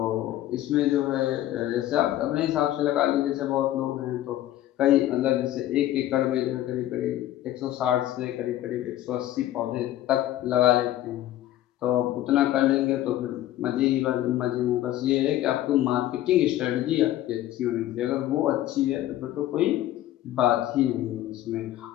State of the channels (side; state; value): right; quieter; 13.7 dB